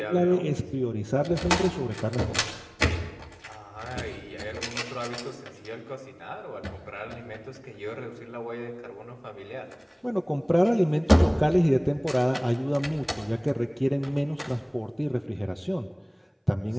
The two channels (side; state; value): both; identical; correlation 1.00